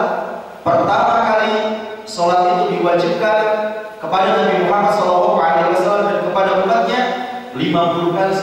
Pertama kali sholat itu diwajibkan kepada Nabi Muhammad SAW dan kepada umatnya 50 kali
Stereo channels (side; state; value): both; identical; correlation 1.00